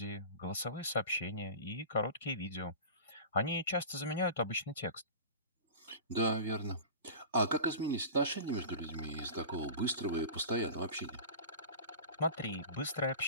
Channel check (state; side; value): inverted; both; correlation -0.34